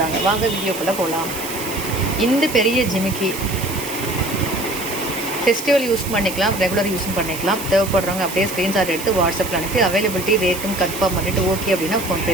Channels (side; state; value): right; noise; hiss, 9 dB below the sound